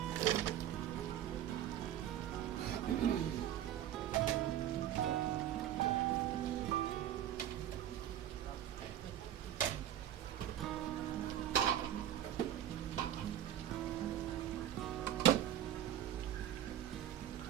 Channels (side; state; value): left; quieter; 11.3 dB